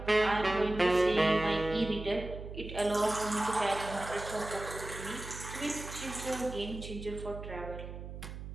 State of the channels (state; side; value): noise; right; hum, 10 dB below the sound